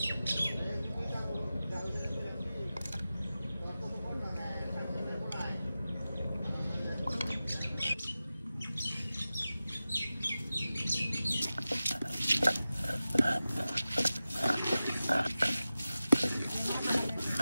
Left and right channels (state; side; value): inverted; both; correlation -0.94